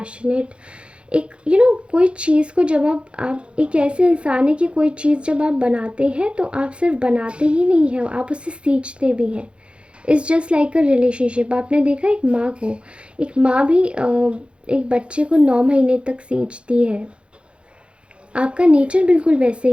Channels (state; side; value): late; left; 0.058 ms